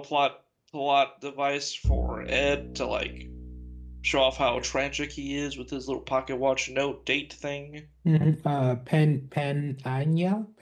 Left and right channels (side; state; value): both; identical; correlation 1.00